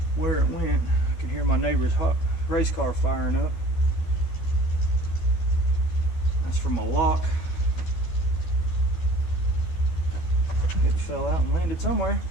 where it went. I can hear my neighbor's race car firing up. That's from a lock. It fell out and landed somewhere.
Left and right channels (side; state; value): right; late; 12 ms